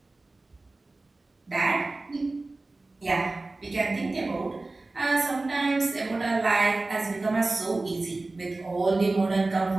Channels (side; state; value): left; quieter; 3.2 dB